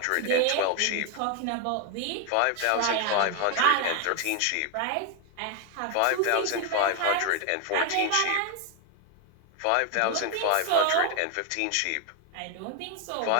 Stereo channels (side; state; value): both; different; correlation 0.01